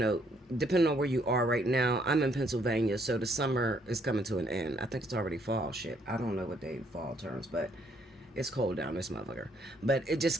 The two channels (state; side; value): normal; both; correlation 0.68